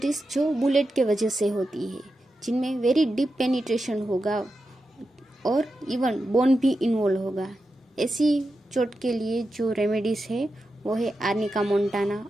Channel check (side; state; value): both; normal; correlation 0.89